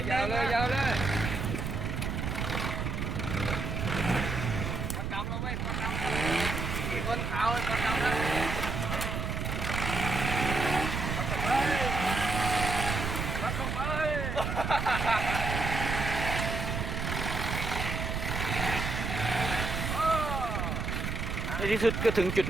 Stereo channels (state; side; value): noise; right; rumble, 2 dB below the sound